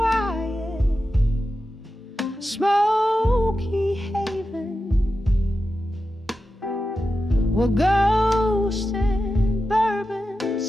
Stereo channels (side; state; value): both; normal; correlation 0.91